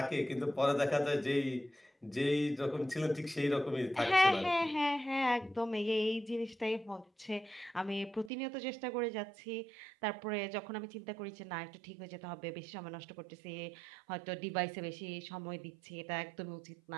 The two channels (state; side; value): drops out; left; at 8.3 s